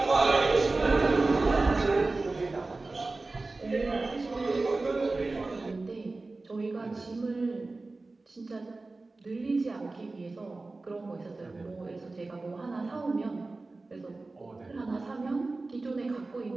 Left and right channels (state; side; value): quieter; left; 3.4 dB